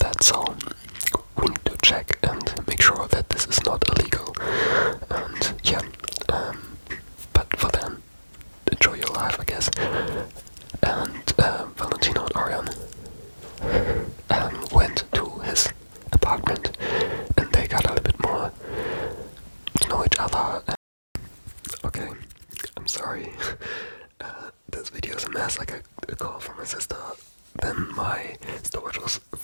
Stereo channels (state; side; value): inverted; both; correlation -1.00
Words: so we need to check and make sure that this is not illegal. And yeah, but for then, enjoy your life, I guess. And Valentino and Orion went to his apartment, and they got a little bit more to know each other. Okay, I'm sorry. This video is a mess. I got a call from my sister. Then my storage was